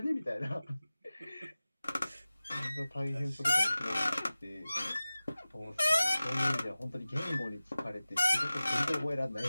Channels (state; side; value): inverted; both; correlation -0.97